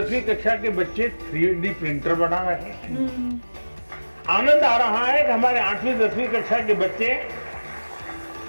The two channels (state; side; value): inverted; both; correlation -1.00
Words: कक्षा के बच्चे 3D प्रिंटर बना रहे हैं। आनंद आ रहा है कि हमारे 8वीं 10वीं कक्षा के बच्चे